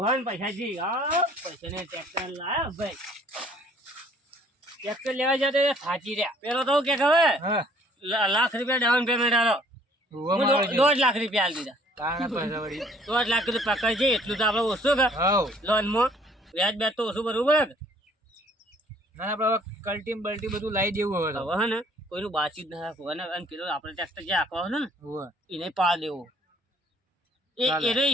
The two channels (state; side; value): normal; both; correlation 0.58